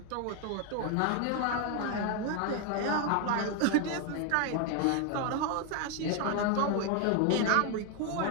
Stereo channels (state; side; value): different; both; correlation 0.01